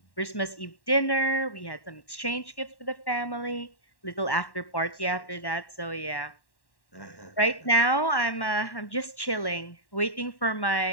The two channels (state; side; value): late; right; 1.1 ms